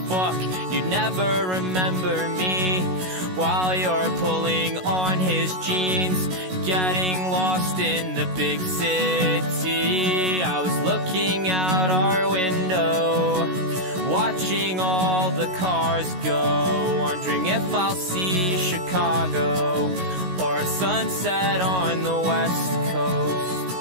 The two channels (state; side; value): late; left; 16 ms